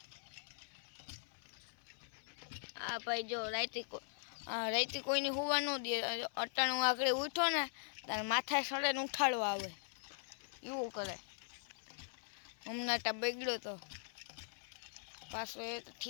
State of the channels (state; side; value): silent; right; 50 dB below the other